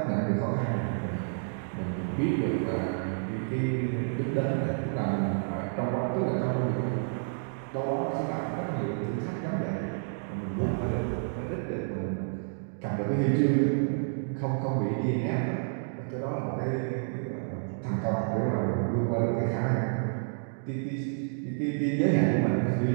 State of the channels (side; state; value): left; silent; digital silence